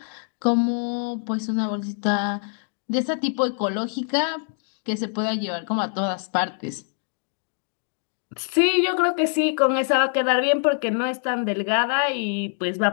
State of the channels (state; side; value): silent; right; 62 dB below the other